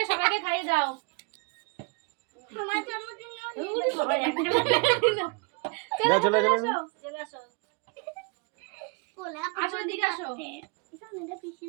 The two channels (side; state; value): left; quieter; 31.3 dB